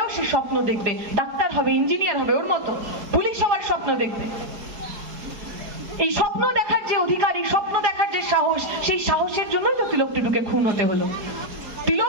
সে স্বপ্ন দেখবে, ডাক্তার হবে, ইঞ্জিনিয়ার হবে, ওর মতো পুলিশ হওয়ার স্বপ্ন দেখবে। এই স্বপ্ন দেখার যে অধিকার, এই স্বপ্ন দেখার যে সাহস, সেই সাহসের জন্যই তো তিলক টুডুকে খুন হতে হলো।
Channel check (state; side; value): late; left; 4.9 ms